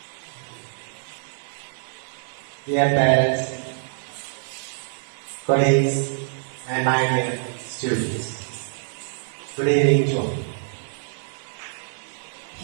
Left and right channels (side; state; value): left; silent; 62 dB below the other